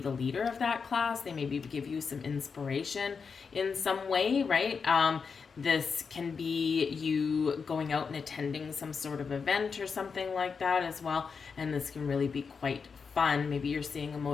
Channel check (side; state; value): right; quieter; 5.5 dB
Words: leader of that class. They maybe give you some inspiration in some way, right? This can be you going out and attending some sort of event or something like that as well. And this can really be quite fun. Maybe you're seeing a